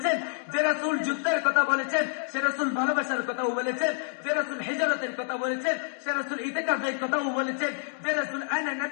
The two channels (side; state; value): right; silent; 59 dB below the other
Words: যে রাসূল যুদ্ধের কথা বলেছেন সে রাসূল ভালোবাসার কথাও বলেছেন, যে রাসূল হিজরতের কথা বলেছেন সে রাসূল ইতিকাফের কথাও বলেছেন, যে রাসূল আনা